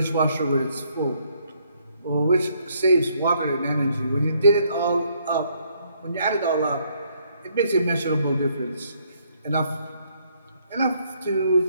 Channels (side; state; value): both; inverted; correlation -0.69